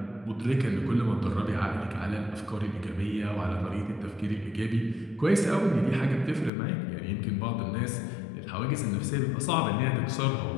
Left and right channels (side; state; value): right; drops out; at 6.5 s